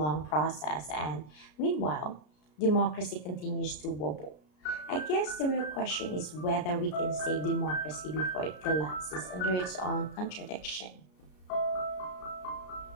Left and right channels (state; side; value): late; right; 33 ms